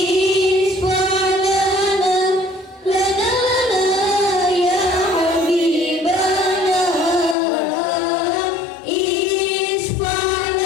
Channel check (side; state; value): right; drops out; at 7.4 s